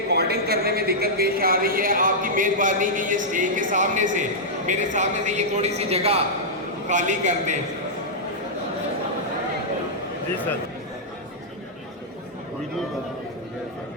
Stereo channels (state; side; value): normal; both; correlation -0.09